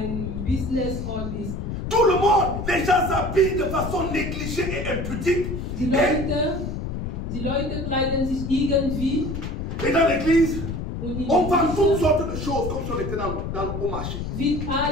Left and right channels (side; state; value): left; noise; rumble, 5 dB below the sound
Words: Business-Ort bist. Tout le monde, les gens s'habillent de façon négligée et impudique. Die Leute kleiden sich irgendwie Et dans l'église, und in on vend die toutes Kirche sortes de choses comme si on était au marché. wird